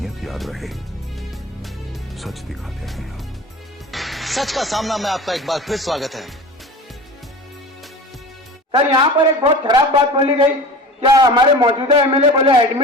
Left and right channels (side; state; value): both; normal; correlation 0.36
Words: याद रहे, सच दिखाते हैं आप। सच का सामना में आपका एक बार फिर स्वागत है। सर, यहाँ पर एक बहुत खराब बात बोली गई। क्या हमारे मौजूदा एमएलए बोले